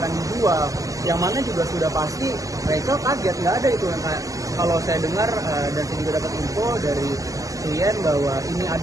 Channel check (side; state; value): left; late; 0.16 ms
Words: akan dijual, yang mana juga sudah pasti Rachel kaget, nggak ada itu yang kayak kalau saya dengar dan saya juga dapat info dari klien bahwa ini